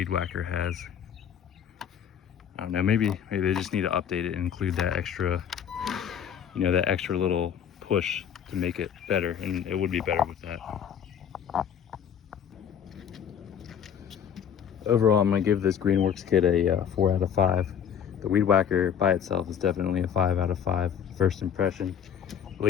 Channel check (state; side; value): quieter; right; 8.3 dB